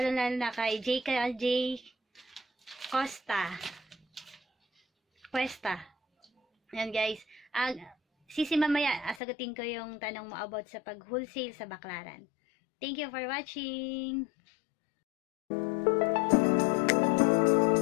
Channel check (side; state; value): right; drops out; at 9.2 s